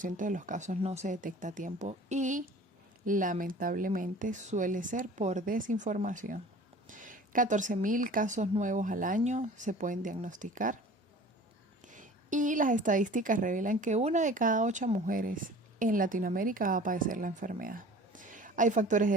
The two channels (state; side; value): normal; both; correlation 0.44